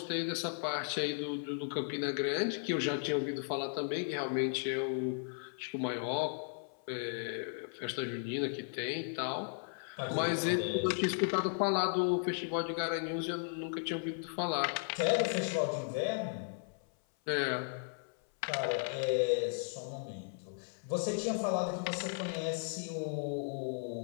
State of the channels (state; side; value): silent; right; 54 dB below the other